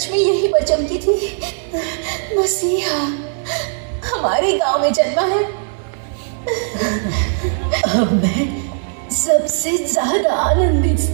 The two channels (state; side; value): silent; left; digital silence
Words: में यहीं पर चमकी थी। मसीहा हमारे गांव में जन्मा है। अब मैं सबसे ज्यादा आनंदित